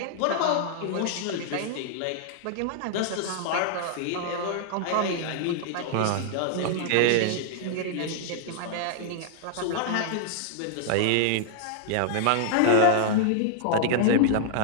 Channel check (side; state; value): both; different; correlation -0.01